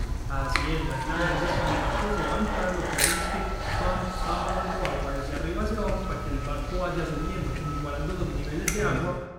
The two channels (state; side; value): identical; both; correlation 1.00